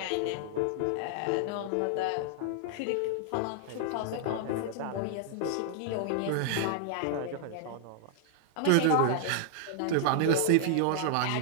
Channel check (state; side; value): different; both; correlation -0.01